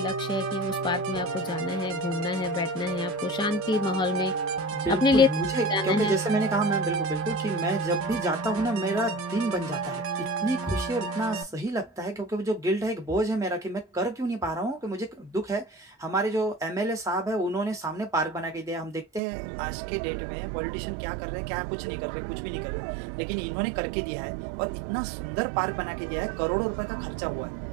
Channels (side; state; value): left; drops out; at 19.2 s